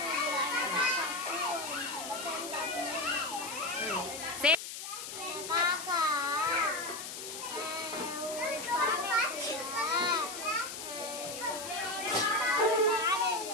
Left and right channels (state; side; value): noise; left; hiss, 8 dB below the sound